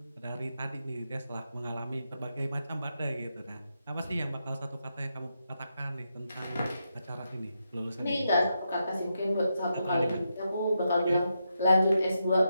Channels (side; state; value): both; inverted; correlation -0.84